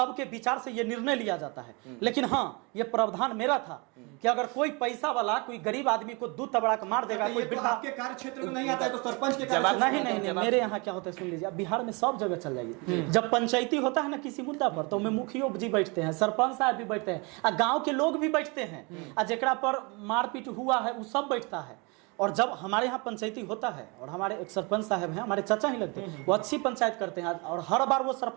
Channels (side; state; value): left; quieter; 29.3 dB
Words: विचार से ये निर्णय लिया जाता है। लेकिन हाँ, ये प्रावधान मेरा था कि अगर कोई पैसा वाला कोई गरीब आदमी को दूध तबड़ा के मार देगा, कोई वृद्धा, आपके कार्य क्षेत्र में नहीं आता है तो सरपंच के कार्य नहीं, मेरे यहाँ क्या होता है सुन लीजिए, बिहार में सब जगह चल जाइए। जब पंचायती होता है ना किसी मुद्दा पर, तो में मुखिया जी बैठते हैं, सरपंच साहब भी बैठते हैं, गांव के लोग भी बैठते हैं, जेकरा पर मारपीट हुआ है वो सब बैठता है। और जब हमारे यहाँ पंचायती होता है और हमारे एक सरपंच साहब हैं, हमारे चाचा ही लगते हैं, वो अच्छी पंचायत करते हैं और हर बार वो